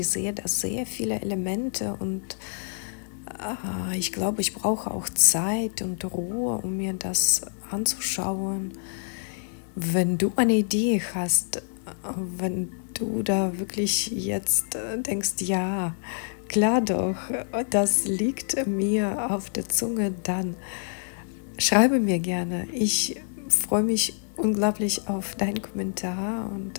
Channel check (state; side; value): silent; right; digital silence